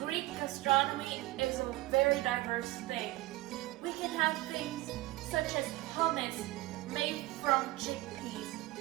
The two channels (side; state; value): left; quieter; 18.9 dB